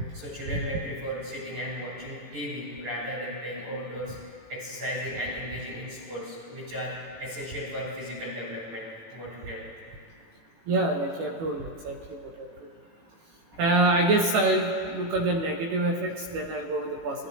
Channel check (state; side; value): late; left; 18 ms